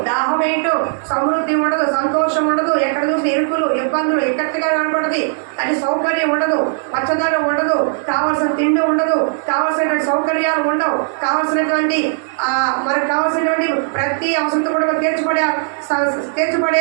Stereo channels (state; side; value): silent; left; digital silence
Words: దాహం వేయటం, సమృద్ధి ఉండదు, సంతోషం ఉండదు. ఎక్కడ చూసి ఇరుకులు, ఇబ్బందులు ఎక్కడిగా కనపడదు. అది సౌకర్యం ఉండదు, పచ్చదనం ఉండదు, కావాల్సిన తిండి ఉండదు, కావాల్సినటువంటి సౌకర్యాలు ఉండవు, కావాల్సినటువంటి మనకు కావాల్సినటువంటి ప్రతి అవసరం కూడా